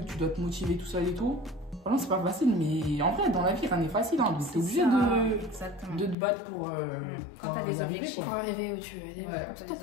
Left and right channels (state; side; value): drops out; right; at 6.2 s